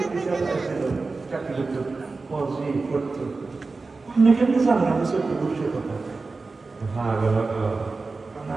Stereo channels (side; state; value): left; quieter; 3.9 dB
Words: চাকরি করতো পজি করতো আপনি কেমনি জানেন আমি সত্যি বুঝছে কথা হ্যাঁ